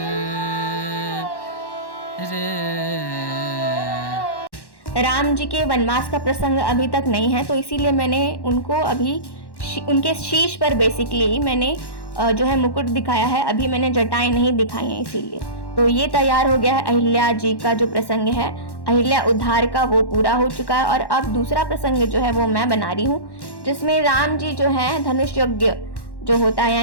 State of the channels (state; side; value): late; right; 1.1 ms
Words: राम जी के वनवास का प्रसंग अभी तक नहीं है, तो इसीलिए मैंने उनको अभी उनके शीश पर बेसिकली मैंने जो है मुकुट दिखाया है। अभी मैंने जटाएं नहीं दिखाई हैं इसीलिए। तो ये तैयार हो गया है अहिल्या जी का जो प्रसंग है, अहिल्या उद्धार का, वो पूरा हो चुका है। और अब दूसरा प्रसंग जो है वो मैं बना रही हूँ, जिसमें राम जी जो है धनुष यज्ञ जो होता है,